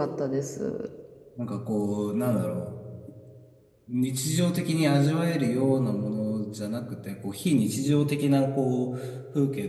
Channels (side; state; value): both; identical; correlation 1.00